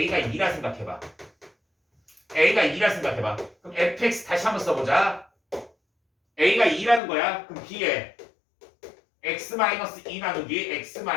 2라 생각해봐. a가 2라 생각해봐. 그럼 fx 다시 한번 써보자. a가 2라는 거야. 그럼 b에 x-2 나누기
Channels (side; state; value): right; drops out; at 7.0 s